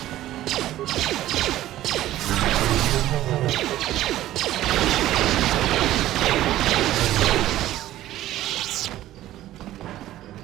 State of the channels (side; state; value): left; quieter; 14.2 dB